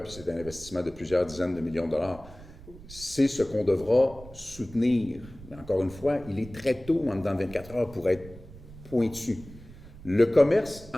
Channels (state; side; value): noise; right; rumble, 18 dB below the sound